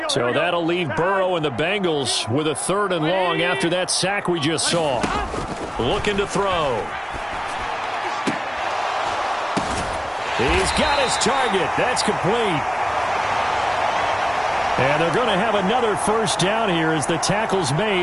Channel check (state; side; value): identical; both; correlation 1.00